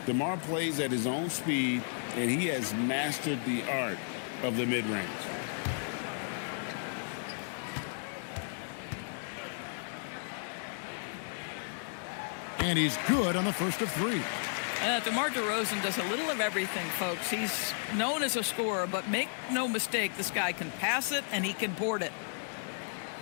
DeMar plays at his own speed, and he has mastered the art of the mid-range. And he's good on the first of 3. DeMar DeRozan does a little of everything, folks. He's known as a scorer, but make no mistake, this guy can pass it and he can board it.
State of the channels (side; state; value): right; silent; 55 dB below the other